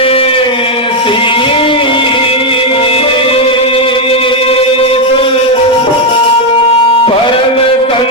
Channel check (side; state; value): both; normal; correlation 0.03